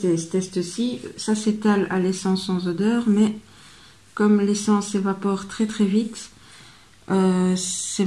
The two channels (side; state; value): both; identical; correlation 1.00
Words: ce test-ci, ça s'étale à l'essence sans odeur, mais comme l'essence s'évapore très très vite, c'est